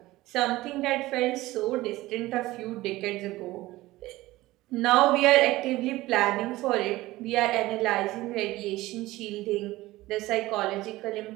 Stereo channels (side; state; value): left; quieter; 18.1 dB